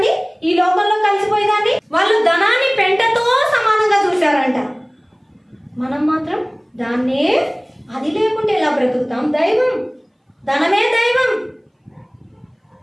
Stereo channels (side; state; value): both; identical; correlation 1.00